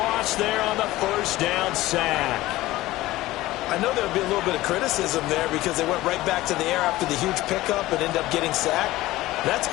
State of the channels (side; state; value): right; quieter; 17.3 dB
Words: there on the first down sack. I know there would be a little bit of criticism there because they went right back to the air after the huge pickup and ended up getting sacked. That's